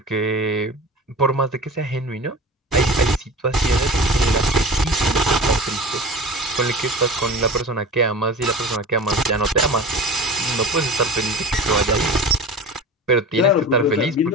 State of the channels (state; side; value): normal; both; correlation 0.35